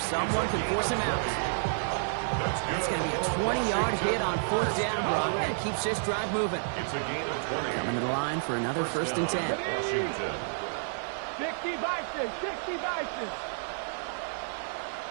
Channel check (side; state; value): left; silent; digital silence